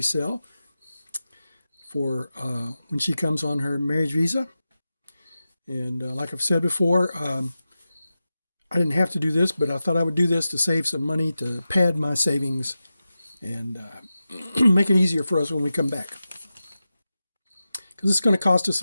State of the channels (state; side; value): inverted; both; correlation -0.93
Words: for when she comes on her marriage visa. And like I've said before, I didn't have to do this, but I thought I would do this to save some money to pad my savings and make it easier for us when we come back. Because it's going to cost us